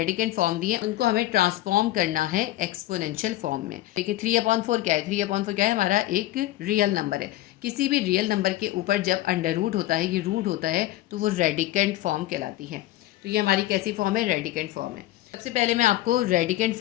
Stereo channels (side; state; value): right; quieter; 15.6 dB